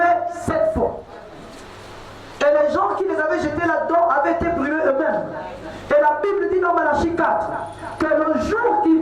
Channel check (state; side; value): identical; both; correlation 1.00